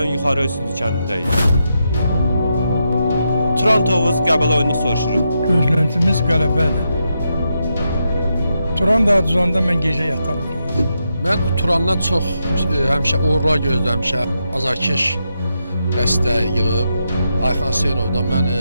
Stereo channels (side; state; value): both; inverted; correlation -0.84